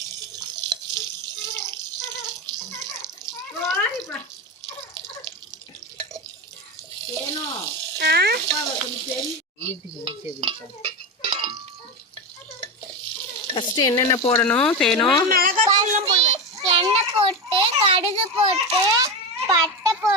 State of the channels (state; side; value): normal; both; correlation 0.18